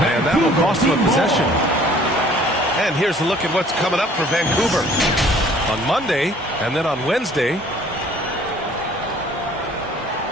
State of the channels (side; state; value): both; normal; correlation 0.54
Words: that will cost him a possession. And here's a look at what's coming up for Vancouver on Monday and then on Wednesday.